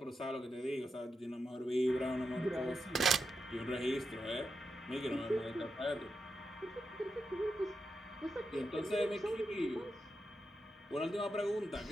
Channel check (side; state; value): both; normal; correlation 0.87